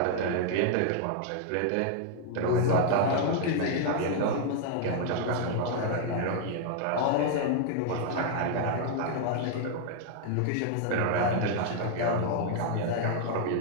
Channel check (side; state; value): both; different; correlation 0.00